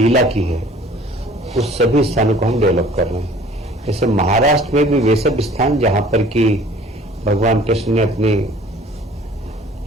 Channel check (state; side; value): normal; both; correlation 0.51